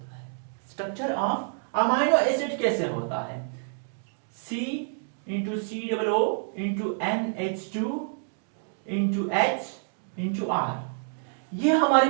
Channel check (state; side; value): silent; left; digital silence